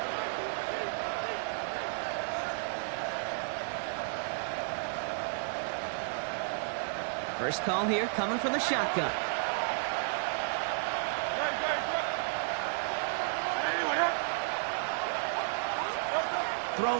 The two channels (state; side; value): silent; left; digital silence